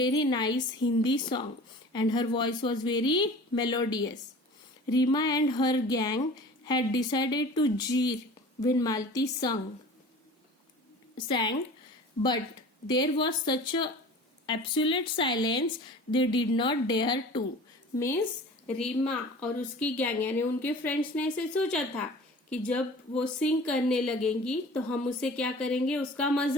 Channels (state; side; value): normal; both; correlation 0.42